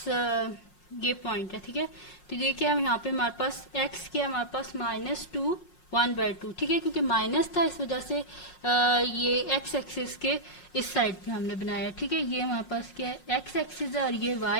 ये पॉइंट है। ठीक है, तो ये क्या है यहाँ पे हमारे पास x क्या है हमारे पास -2 1/2। ठीक है, क्योंकि माइनस था इस वजह से ये x एक्सिस के इस साइड पे हमने बनाया। ठीक है, ये हमारे पास क्या है, x एक्सिस है और ये y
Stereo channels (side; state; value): right; late; 5.5 ms